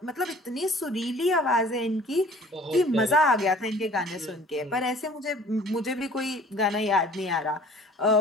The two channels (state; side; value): normal; both; correlation 0.50